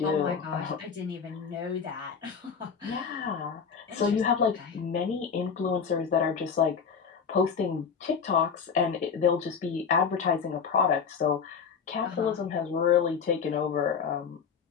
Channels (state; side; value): quieter; right; 6.3 dB